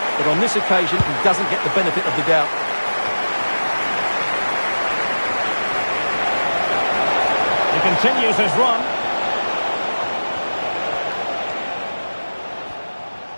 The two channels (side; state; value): both; inverted; correlation -1.00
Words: But on this occasion, he doesn't get the benefit of the doubt. He continues his run.